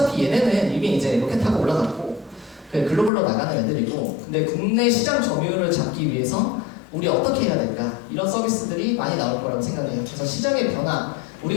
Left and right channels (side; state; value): right; drops out; at 3.1 s